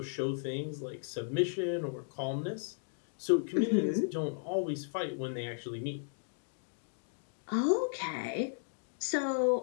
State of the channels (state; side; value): silent; right; digital silence